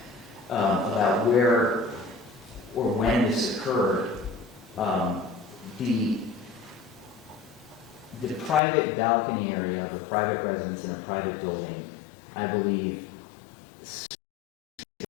about where or when this occurred, the private balcony area of a private residence in a private building, I believe,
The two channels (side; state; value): right; drops out; at 8.6 s